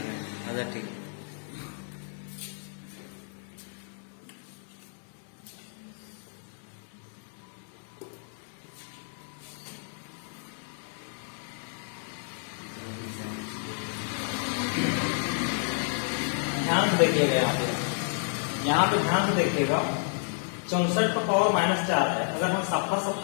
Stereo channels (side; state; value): right; silent; digital silence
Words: अच्छा ठीक है। ध्यान से देखिएगा, यहाँ पे ध्यान से देखिएगा, 64 का पावर -4 है, अगर हम सफा